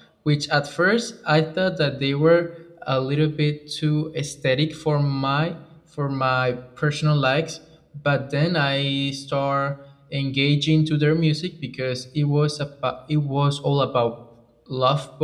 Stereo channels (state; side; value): identical; both; correlation 1.00